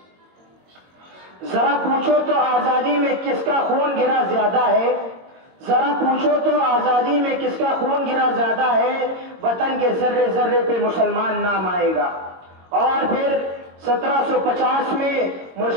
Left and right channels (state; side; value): late; left; 22 ms